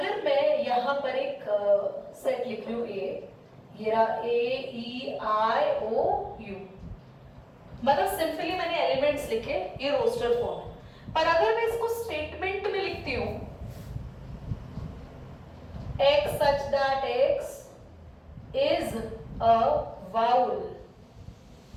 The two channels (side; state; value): both; identical; correlation 1.00